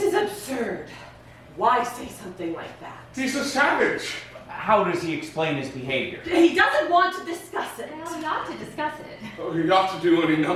is absurd. Why say something like that? He's a savage. How does he explain his behavior? He doesn't want to discuss it. Well, we ought to discuss it. Oh, he ought to do any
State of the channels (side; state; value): both; identical; correlation 1.00